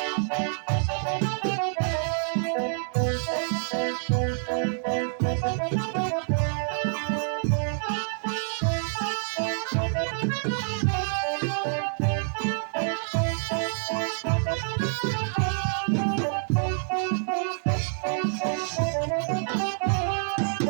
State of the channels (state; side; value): silent; left; digital silence